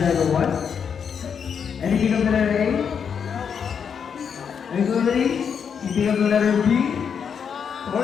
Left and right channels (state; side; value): quieter; right; 7.0 dB